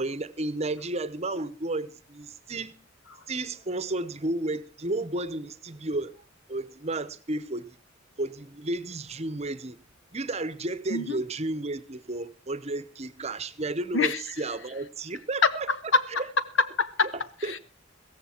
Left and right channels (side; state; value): both; normal; correlation 0.20